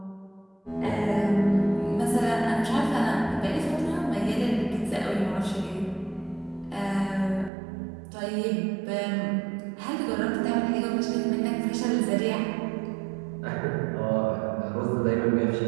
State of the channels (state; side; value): drops out; left; at 7.5 s